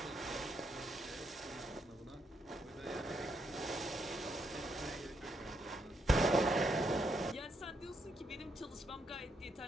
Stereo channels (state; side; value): normal; both; correlation 0.77